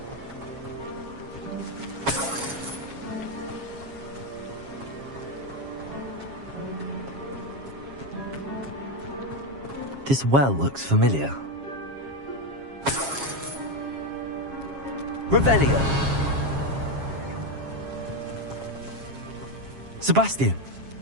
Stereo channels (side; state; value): left; late; 7.3 ms